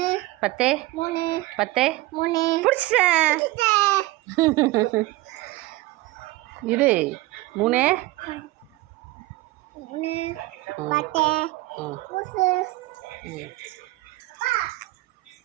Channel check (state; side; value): quieter; left; 19.1 dB